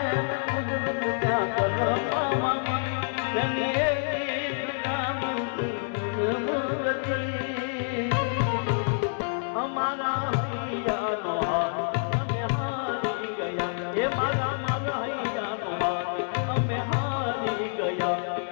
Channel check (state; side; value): silent; right; digital silence